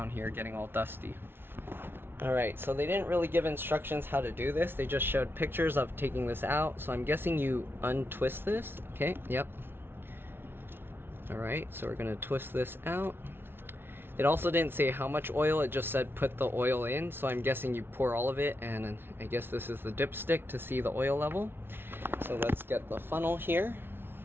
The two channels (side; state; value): left; late; 0.11 ms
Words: here getting all dusty. Alright, so they didn't really give instructions how to do this. They just showed pictures of taking this out. So I'm guessing you untwist this. Okay, yep. Alright, so we're gonna twist this out. It also didn't say how much oil, it just said put the oil in, so I'm guessing you pour all of it, and I guess this is the dipstick to see the oil level. So let's get the funnel here.